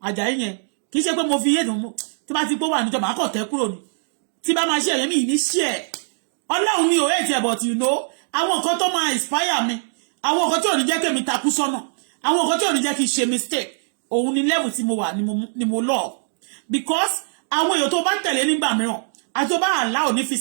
Àjàyí yẹn kì í ṣe pé mo fi yéèdùn mú tí bá ti pé wà níjọba àkọ́ tẹ́ kúrò ní tí bá máa ṣe ẹ̀yẹ́ mi ní ṣe ẹ̀ Ọlọ́run mi ò hate ẹ̀ but you know àwọn nǹkan tó máa inspire mi àwọn nǹkan tí ò ní jẹ́ kí èmi takú sọ́nà àwọn nǹkan tí ò ní jẹ́ kí n ṣe mistake òun ni level tí mo wà ni mo lọ because àwọn èèyàn tó bá tẹ̀lé nígbà mìíràn àti tó bá allow ní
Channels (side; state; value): left; silent; digital silence